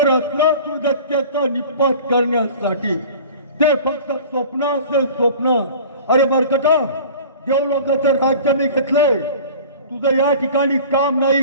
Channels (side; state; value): both; inverted; correlation -0.41